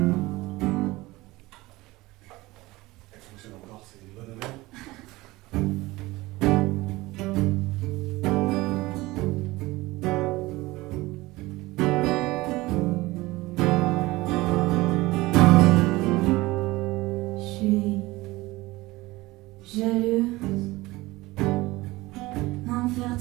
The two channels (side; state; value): left; quieter; 20.1 dB